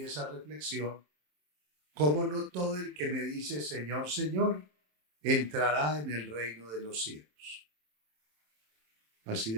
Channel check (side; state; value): left; late; 27 ms